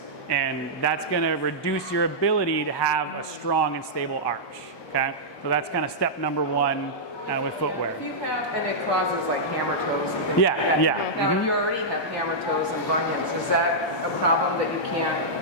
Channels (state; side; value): late; right; 1.2 ms